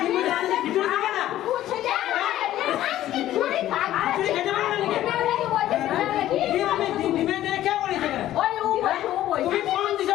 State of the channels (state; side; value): quieter; right; 13.4 dB